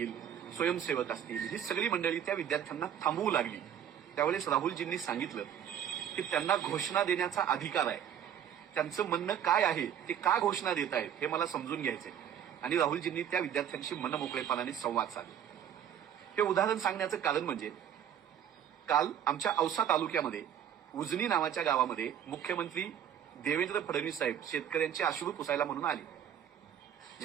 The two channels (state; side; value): quieter; left; 9.4 dB